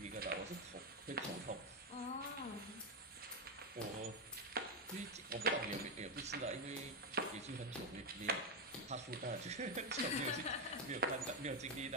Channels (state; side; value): normal; both; correlation 0.06